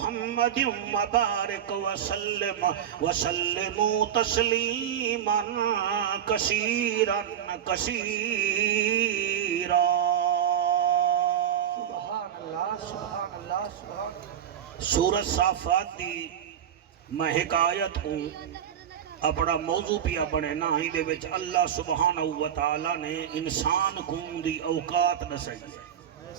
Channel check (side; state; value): left; quieter; 9.6 dB